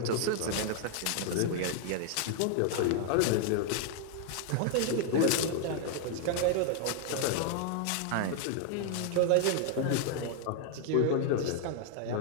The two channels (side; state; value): both; different; correlation 0.00